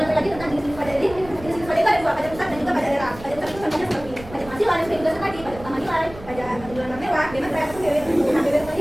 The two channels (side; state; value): right; noise; rumble, 16 dB below the sound